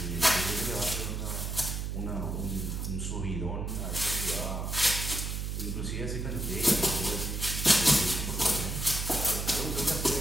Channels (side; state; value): right; noise; hum, 3 dB below the sound